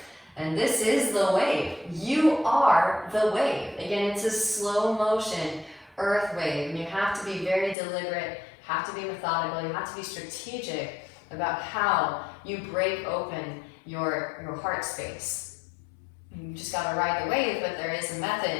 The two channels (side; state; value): right; drops out; at 7.8 s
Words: And this is the wave. You are the wave. Again, it's a slow motion earth wave, and you have to be very deliberate, have to be methodical, you have to be strategic about how you break open your heart space. You just gotta ride the wave, but there is a